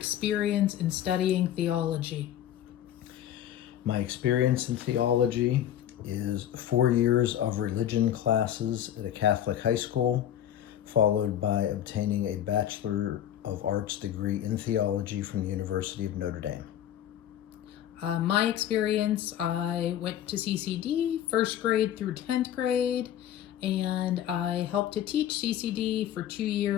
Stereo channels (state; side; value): quieter; right; 11.0 dB